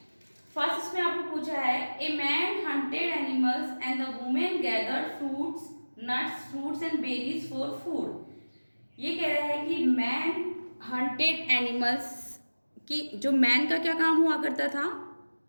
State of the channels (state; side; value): inverted; both; correlation -1.00